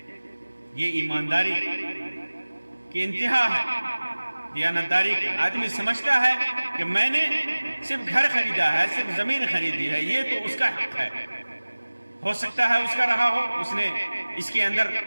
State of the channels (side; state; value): both; inverted; correlation -1.00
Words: یہ ایمانداری کی انتہا ہے، دیانتداری کی. آدمی سمجھتا ہے کہ میں نے صرف گھر خریدا ہے، صرف زمین خریدی ہے، یہ تو اس کا حق ہے. ہو سکتا ہے اس کا رہا ہو، اس نے اس کے اندر